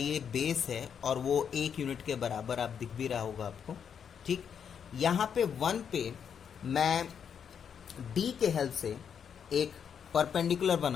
बेस है और वो 1 यूनिट के बराबर आप दिख भी रहा होगा आपको। ठीक, यहाँ पे 1 पे मैं डी के हेल्प से एक परपेंडिकुलर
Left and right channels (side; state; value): right; quieter; 7.6 dB